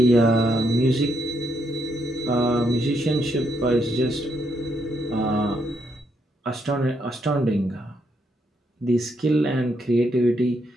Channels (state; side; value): normal; both; correlation 0.77